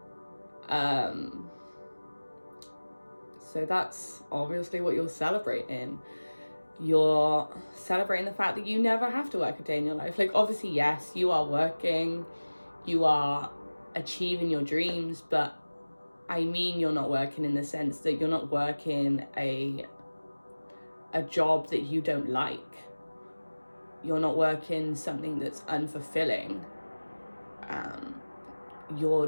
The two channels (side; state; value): both; inverted; correlation -1.00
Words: So that's obviously what you're celebrating. You're celebrating the fact that you never have to work a day in your life. Like, obviously, yes, you are working, you are achieving your dreams, but I mean, you're not working in the sense that you're not working a job that you don't like. You're not working something that's unfulfilling. You're